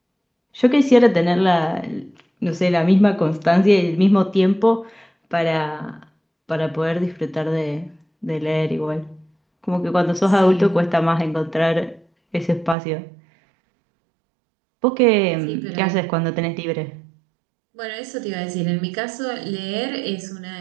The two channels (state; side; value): drops out; left; at 12.8 s